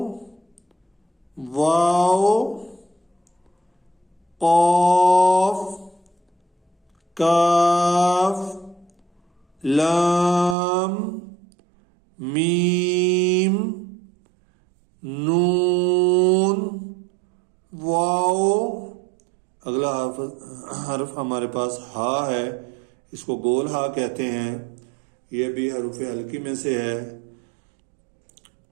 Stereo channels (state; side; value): drops out; left; at 10.6 s